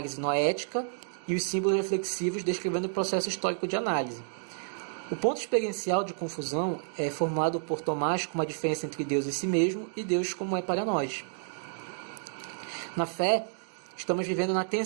noética e os símbolos reflexivos descrevendo o processo histórico de análise. O ponto experiencial de confusão é formulado por Tomás como a diferença entre Deus e si mesmo e Deus como é para nós. Na fé, estamos vivendo na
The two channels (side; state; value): left; silent; 58 dB below the other